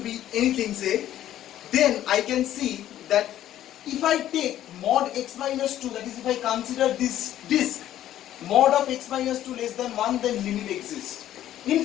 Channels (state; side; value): quieter; right; 12.3 dB